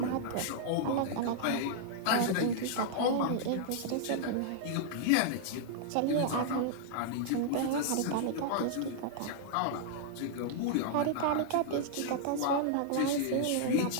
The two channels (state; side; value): different; both; correlation -0.01